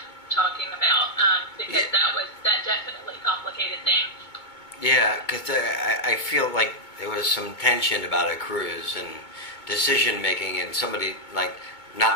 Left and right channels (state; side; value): late; right; 2.2 ms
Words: what you're talking about, because that definitely complicated things. Yeah, because I feel like there was some tension about a cruise and decision making, and somebody like